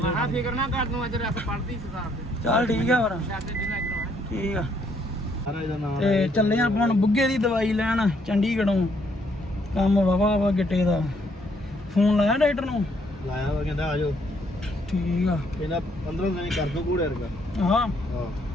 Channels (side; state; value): both; normal; correlation 0.69